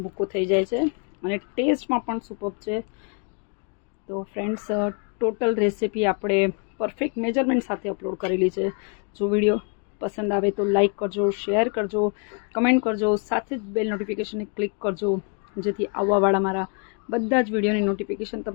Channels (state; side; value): quieter; right; 38.3 dB